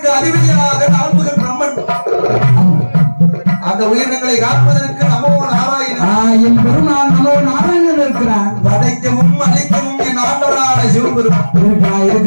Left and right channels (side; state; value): both; inverted; correlation -1.00